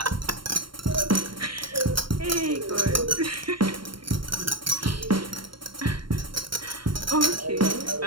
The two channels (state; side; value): late; left; 0.72 ms